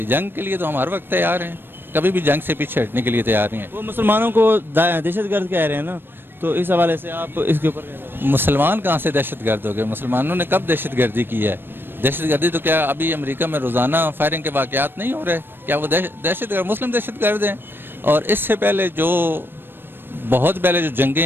جنگ کے لیے تو ہم ہر وقت تیار ہیں، کبھی بھی جنگ سے پیچھے ہٹنے کے لیے تیار نہیں ہیں. وہ مسلمانوں کو دہشت گرد کہہ رہے ہیں نا، تو اس حوالے سے آپ اس کے اوپر کیا کہیں گے؟ مسلمان کہاں سے دہشت گرد ہو گئے؟ مسلمانوں نے کب دہشت گردی کی ہے؟ دہشت گردی تو کیا ابھی امریکہ میں روزانہ فائرنگ کے واقعات نہیں ہو رہے؟ کیا وہ دہشت گرد مسلم دہشت گرد ہیں؟ اور اس سے پہلے بہت پہلے جو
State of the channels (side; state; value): left; late; 0.099 ms